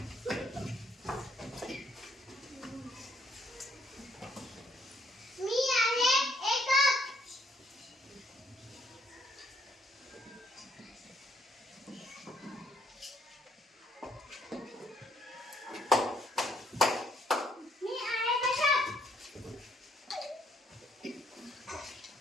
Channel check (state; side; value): normal; both; correlation 0.68